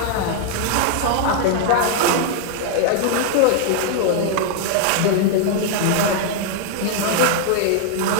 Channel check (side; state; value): both; different; correlation 0.00